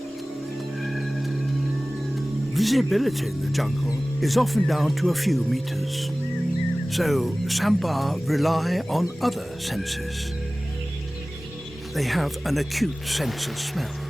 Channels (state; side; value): normal; both; correlation 0.98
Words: Visibility in the jungle is often down to a few meters. So sambar rely on other senses. They have an acute sense of smell.